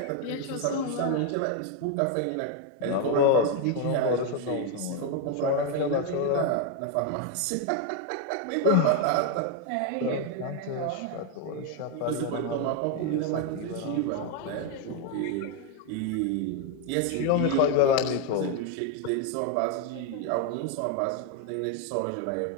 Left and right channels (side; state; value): both; different; correlation 0.01